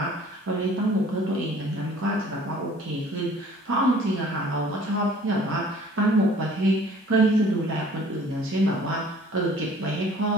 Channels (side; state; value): both; normal; correlation 0.51